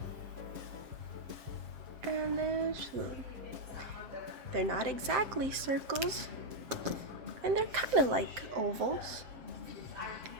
And then swoop. They're not exactly circles, and they're kind of like ovals.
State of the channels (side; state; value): left; late; 7.7 ms